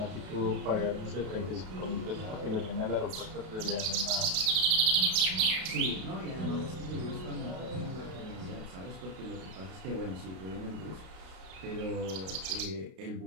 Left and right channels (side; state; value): left; late; 32 ms